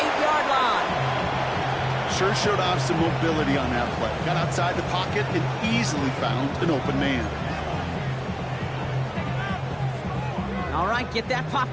line. Sure showed off some mobility on that play. Got outside the pocket and easily found an open man. All right, get that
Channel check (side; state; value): both; identical; correlation 1.00